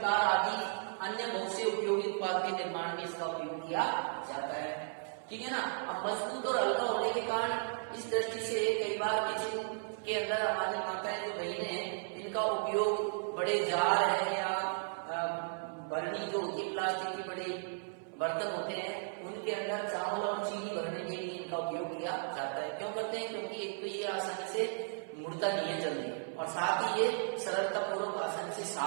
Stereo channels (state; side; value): silent; left; 54 dB below the other